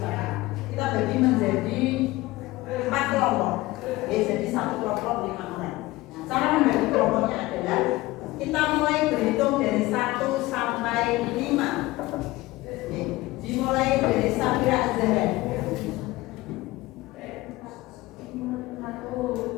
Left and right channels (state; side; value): quieter; right; 19.3 dB